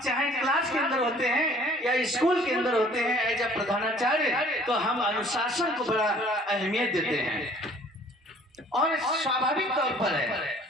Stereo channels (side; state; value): both; normal; correlation 0.54